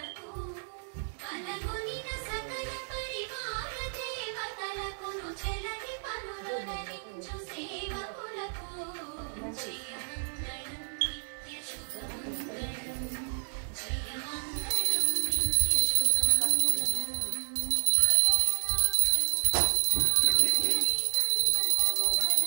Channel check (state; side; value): silent; left; digital silence